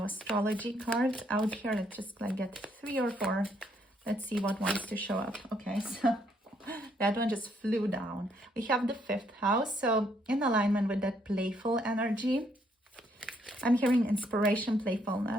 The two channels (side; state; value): both; normal; correlation 0.71